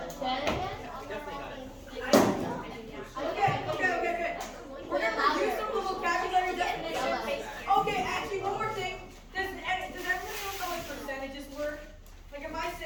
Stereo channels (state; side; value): identical; both; correlation 1.00